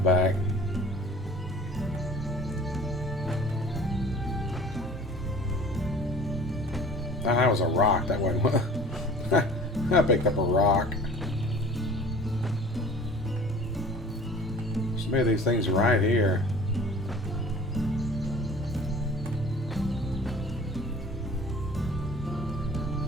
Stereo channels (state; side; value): normal; both; correlation 0.45